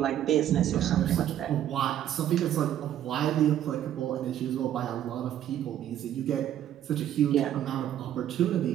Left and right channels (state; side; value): quieter; left; 11.2 dB